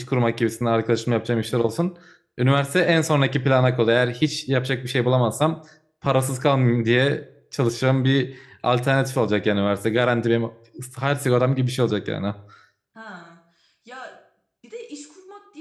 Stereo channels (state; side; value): identical; both; correlation 1.00